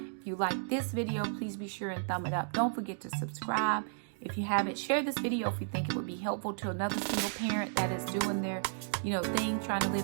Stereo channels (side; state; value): left; silent; digital silence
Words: you like this video, please be sure and thumb it up. Don't forget to subscribe. If you haven't, share this video if you think it would be helpful to another single parent that is doing their, thing, trying to